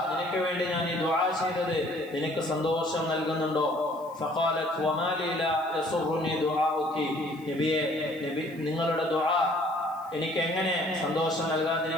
നിനക്ക് വേണ്ടി ഞാൻ ഈ ദുആ ചെയ്തത് നിനക്ക് സന്തോഷം നൽകുന്നുണ്ടോ? ഫഖാലത് വമാ ലി ലാ യസുറുനി ദുആഉകി, നബിയെ നിങ്ങളുടെ ദുആ എനിക്ക് എങ്ങനെ സന്തോഷം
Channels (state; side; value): noise; left; hiss, 28 dB below the sound